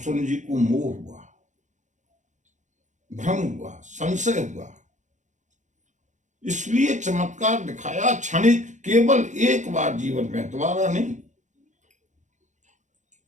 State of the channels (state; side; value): late; left; 0.35 ms